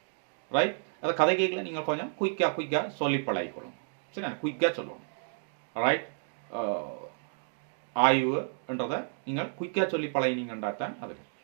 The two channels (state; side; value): silent; left; 57 dB below the other